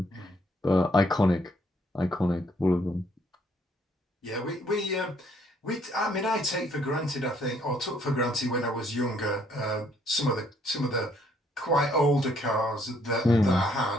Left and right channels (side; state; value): both; normal; correlation 0.67